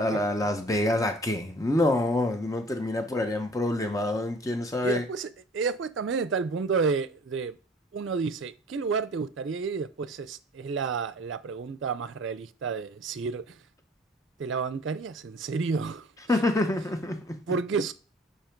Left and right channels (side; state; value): both; normal; correlation 0.49